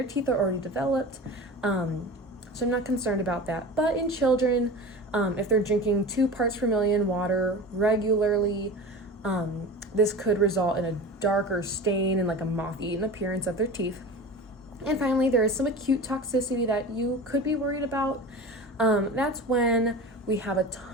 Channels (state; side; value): normal; both; correlation 0.33